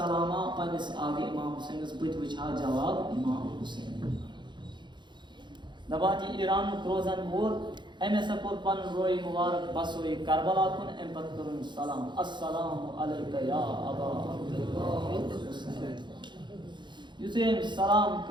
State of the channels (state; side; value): late; left; 0.22 ms